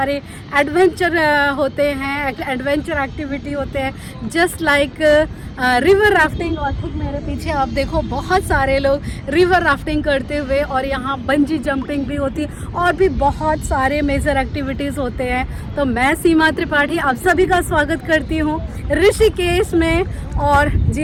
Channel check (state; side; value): identical; both; correlation 1.00